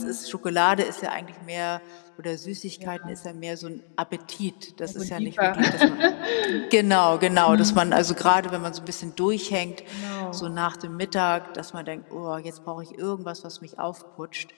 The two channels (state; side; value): silent; right; digital silence